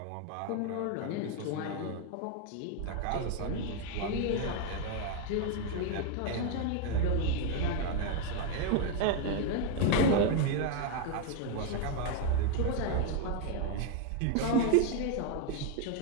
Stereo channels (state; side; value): different; both; correlation 0.01